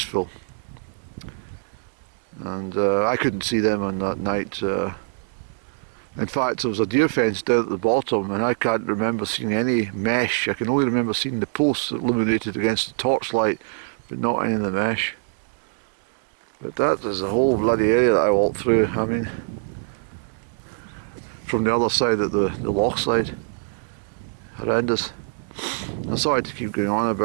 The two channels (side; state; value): left; silent; 63 dB below the other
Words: And I couldn't see them on that night. In fact, there was a deer fence down at the bottom, and I can't remember seeing any mesh. I can only remember seeing the posts illuminated against the torchlight, but not any of the mesh. But that is the whole bloody area that I walked through. I mean, from the other side at the loch side. Horrendous. I'm sorry to keep going on